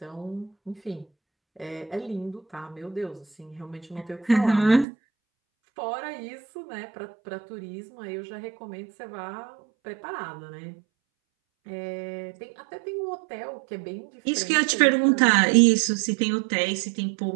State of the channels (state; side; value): drops out; left; at 4.9 s